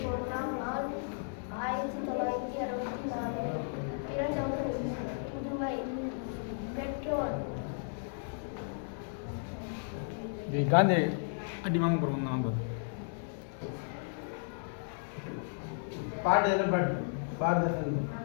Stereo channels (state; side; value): silent; right; digital silence